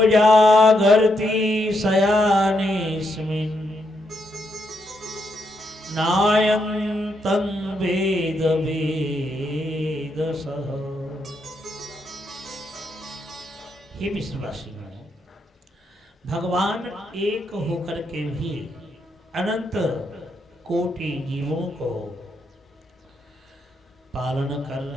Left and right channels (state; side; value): normal; both; correlation 0.79